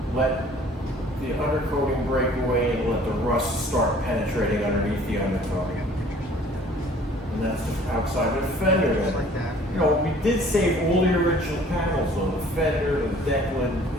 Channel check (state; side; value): normal; both; correlation 0.53